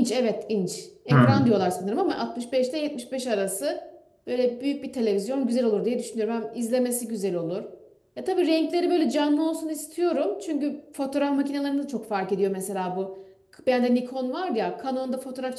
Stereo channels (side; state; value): both; identical; correlation 1.00